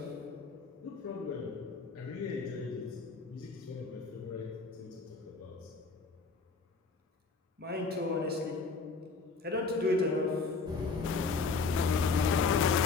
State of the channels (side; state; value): right; quieter; 4.4 dB